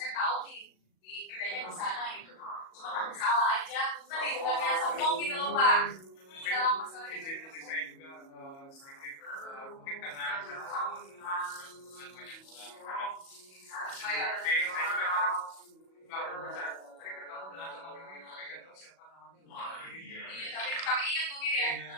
tahu nih di kerjanya di sana gitu. Cuma takut salah aja. Tadi bukannya sombong gitu loh Pak. Dalam masalah Jadi saya juga sedikit mungkin karena saya sama dengan banyak orang. Saya juga kadang nggak bisa tadi ketemu dengan teman ini tapi nggak tahu siapa namanya. iya, tapi ingat mungkin ya.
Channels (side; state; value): right; late; 37 ms